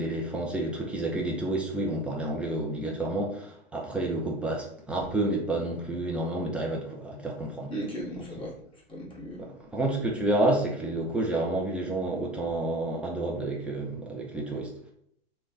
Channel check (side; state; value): both; normal; correlation 0.41